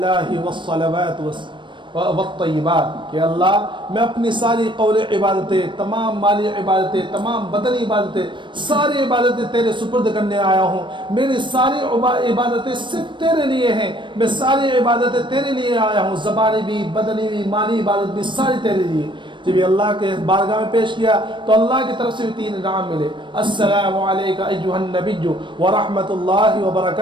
والصلوات والطیبات کہ اللہ میں اپنی ساری قول عبادتیں, تمام مالی عبادتیں, تمام بدنی عبادتیں, ساری عبادتیں تیرے سپرد کرنے آیا ہوں. میری ساری عبادتیں صرف تیرے لیے ہیں, میں ساری عبادتیں تیرے لیے آیا ہوں, زبانی بھی, بدنی بھی, مالی عبادت بھی ساری تیرے لیے. جب یہ اللہ کے بارگاہ میں پیش کیا تو اللہ کی طرف سے بھی 3 انعام ملے. السلام علیکم ایھا النبی ورحمۃ اللہ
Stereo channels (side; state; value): left; late; 0.23 ms